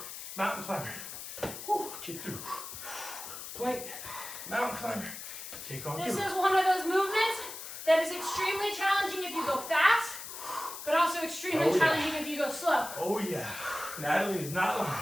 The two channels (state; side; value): noise; left; hiss, 10 dB below the sound